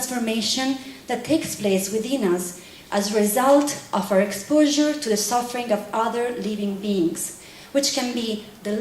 that takes place within us as a result of our exposure to the suffering of other living beings, which can be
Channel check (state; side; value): identical; both; correlation 1.00